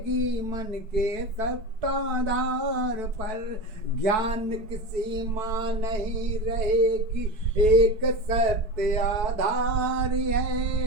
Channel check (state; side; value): late; left; 4.6 ms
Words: मन के सत्ताधार पर, ज्ञान की सीमा नहीं रहेगी एक सत्य आधार